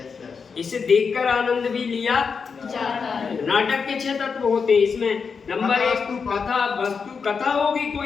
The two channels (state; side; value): quieter; right; 5.6 dB